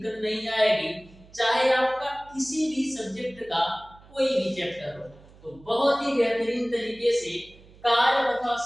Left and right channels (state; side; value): noise; right; hum, 24 dB below the sound